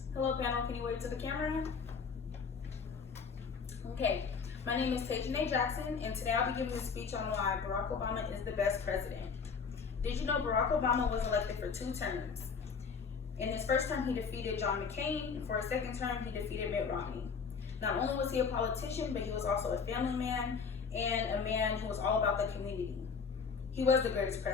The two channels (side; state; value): right; quieter; 5.7 dB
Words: Hello panel, can you wave to the camera? Okay, my name is Tajane Jackson, and today I'll be giving a speech on why Barack Obama is the best president. Did you know Barack Obama was elected for 2 terms? In his first term, he defeated John McCain, and for his second term, he defeated Mitt Romney. Not only was he a politician, but he was also a family man and a man who was all about the community. He was the greatest